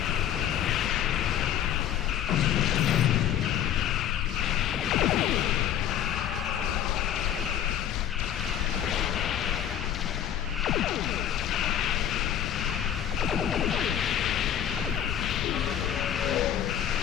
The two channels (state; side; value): quieter; right; 10.3 dB